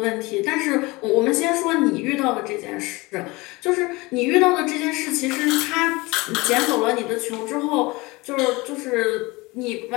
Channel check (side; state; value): right; quieter; 23.2 dB